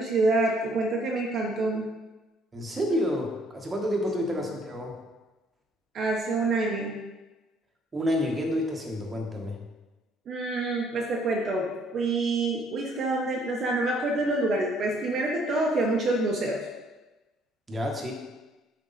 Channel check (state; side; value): normal; both; correlation 0.64